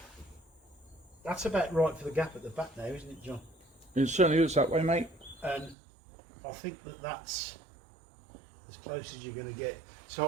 that's about right for the gap at the back now, isn't it, John? It certainly looks that way, mate. And I think that that's as close as you're going to get.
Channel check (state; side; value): drops out; left; at 5.8 s